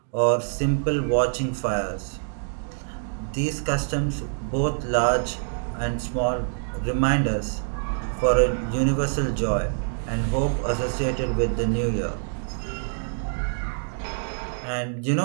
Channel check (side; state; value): left; silent; digital silence